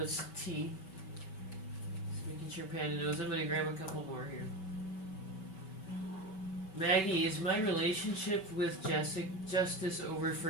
T. Just making sure Panda knows. I'm gonna grab a couple more here. Maggie, is my relationship with Justice over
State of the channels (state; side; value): late; right; 5.2 ms